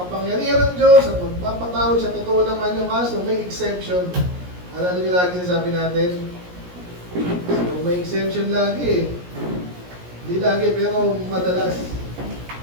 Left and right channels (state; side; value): late; left; 17 ms